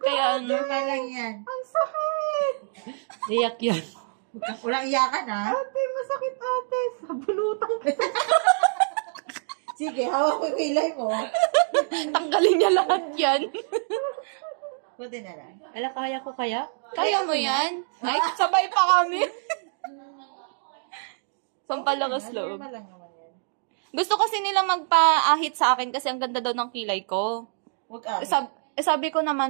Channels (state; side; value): silent; left; digital silence